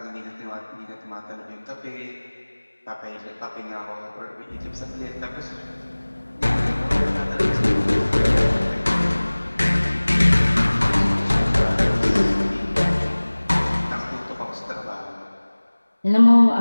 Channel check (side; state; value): both; inverted; correlation -1.00